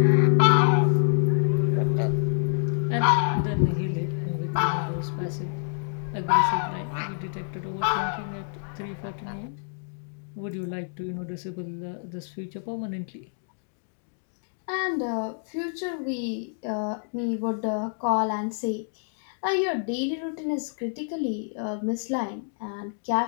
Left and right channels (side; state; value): right; silent; digital silence